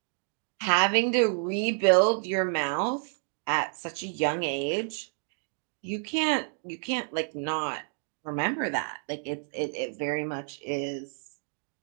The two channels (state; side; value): silent; left; 58 dB below the other